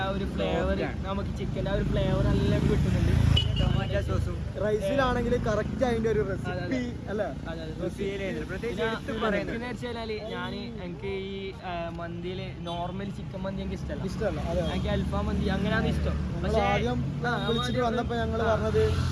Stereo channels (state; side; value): identical; both; correlation 1.00